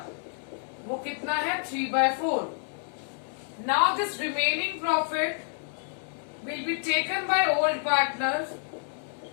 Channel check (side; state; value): right; silent; digital silence